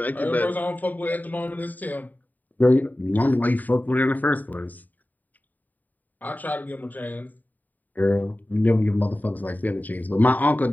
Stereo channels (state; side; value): late; right; 0.084 ms